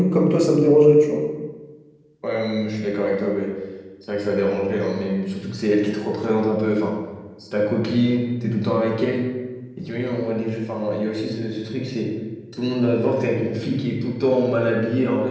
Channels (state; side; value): identical; both; correlation 1.00